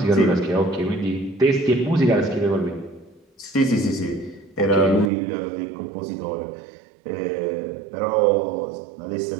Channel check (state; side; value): drops out; left; at 5.1 s